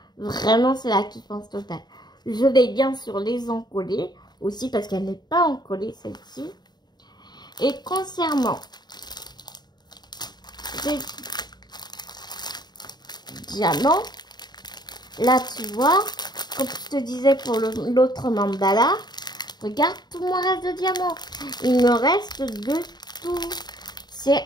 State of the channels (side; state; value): right; late; 0.20 ms